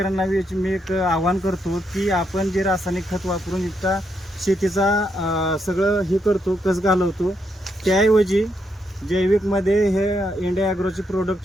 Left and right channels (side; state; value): both; normal; correlation 0.79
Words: मी एक आवाहन करतो की आपण जे रासायनिक खत वापरून इतका शेतीचा सगळं हे करतो, कस घालवतो, त्याऐवजी जैविकमध्ये हे इंडिया ॲग्रोचे